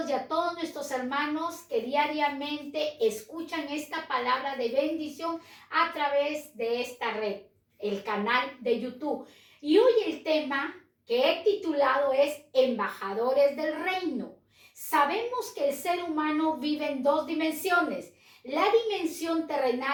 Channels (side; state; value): both; identical; correlation 1.00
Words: y a todos nuestros hermanos que diariamente escuchan esta palabra de bendición a través de esta red, el canal de YouTube. Y hoy el tema que he titulado es Embajadores del Reino. Sabemos que el ser humano vive en dos dimensiones, la dimensión